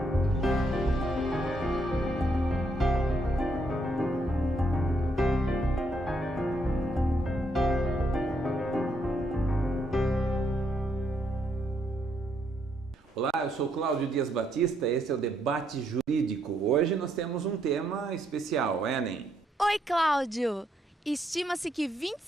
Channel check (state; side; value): normal; both; correlation 0.75